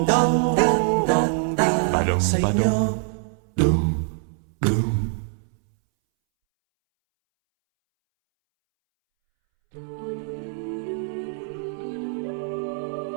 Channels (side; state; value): left; silent; 63 dB below the other